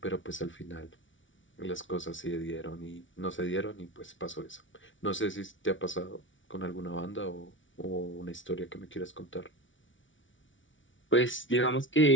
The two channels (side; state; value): right; late; 0.56 ms